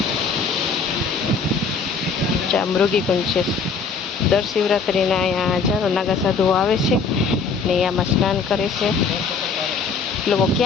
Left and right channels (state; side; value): quieter; right; 5.0 dB